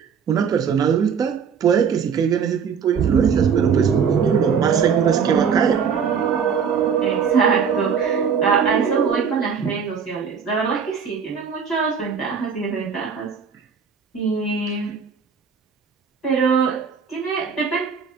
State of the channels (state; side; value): quieter; left; 6.6 dB